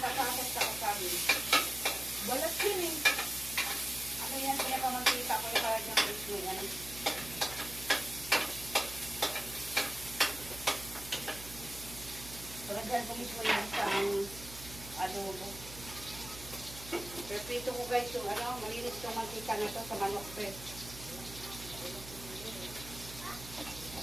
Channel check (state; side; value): noise; right; hum, 13 dB below the sound